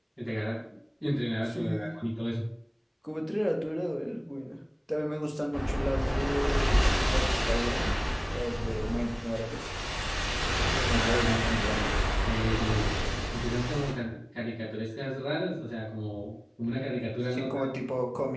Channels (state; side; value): identical; both; correlation 1.00